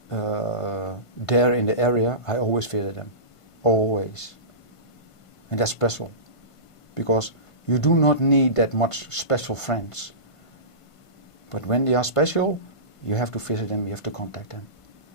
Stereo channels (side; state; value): right; late; 1.5 ms